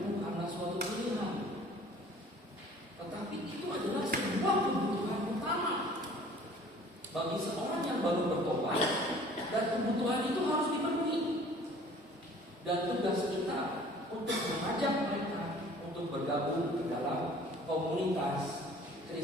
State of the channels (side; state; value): both; normal; correlation 0.50